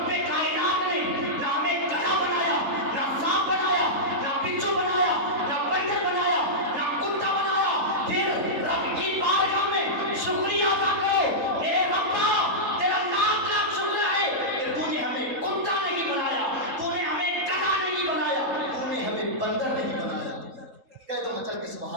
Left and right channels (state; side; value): late; left; 3.9 ms